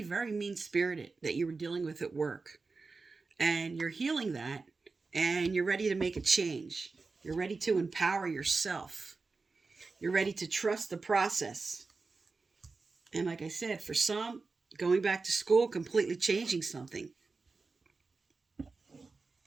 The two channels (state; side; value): quieter; left; 4.1 dB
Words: very mean-spirited that you were dealing with at work. And you're healing that, and you're ready to make a change. You're ready to empower yourself. You're ready to trust the process. And like I said, for some, going back to school, completely changing something.